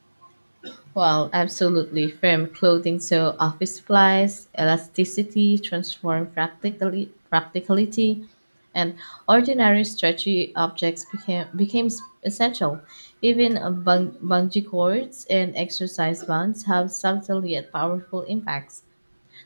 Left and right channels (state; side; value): inverted; both; correlation -1.00